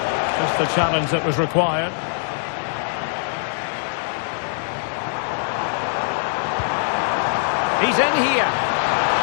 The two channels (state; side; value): silent; right; digital silence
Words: Just the challenge that was required. He's in here.